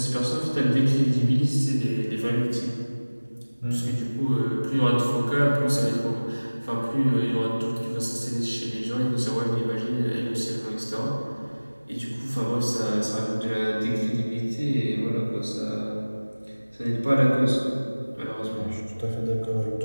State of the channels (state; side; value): inverted; both; correlation -1.00